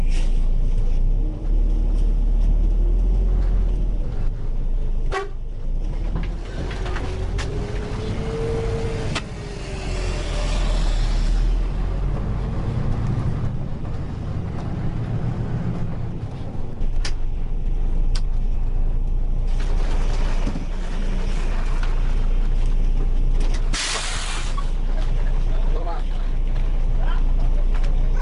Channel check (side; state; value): both; identical; correlation 1.00